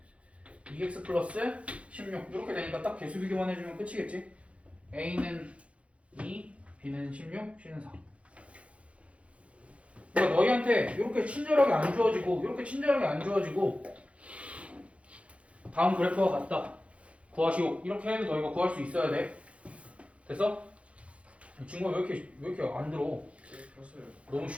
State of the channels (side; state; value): left; late; 0.062 ms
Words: 2x 플러스 16 이렇게 되니까 딱 개수 비교만 해주면 끝이겠지? a는 2, b는 16, c는 4. 그러니까 너희한테 이렇게 친절하게 안 주어지고 이렇게 친절하게 안 주어지고 다음 그래프와 같다. 구하시오. 이렇게 해도 너희가 구할 수 있어야 돼. 됐어? 이 친구가 왜 이렇게 안 들어? 네, 폈어요. 너무